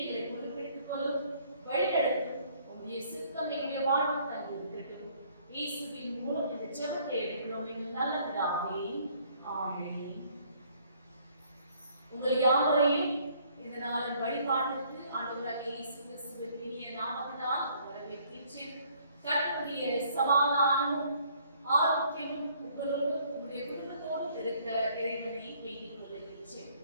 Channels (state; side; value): inverted; both; correlation -0.62